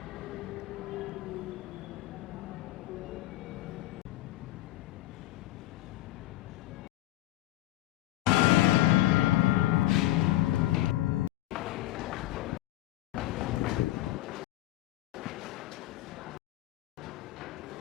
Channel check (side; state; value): right; quieter; 16.1 dB